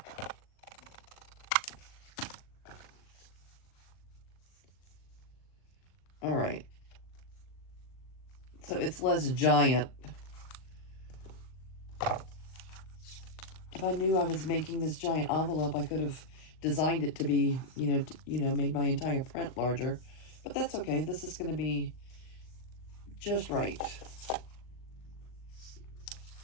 All right. So it's less giant. If I knew I was making this giant envelope, I could have designed it to be, made my entire print larger. But that's okay. This is going to be just right.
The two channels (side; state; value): right; late; 39 ms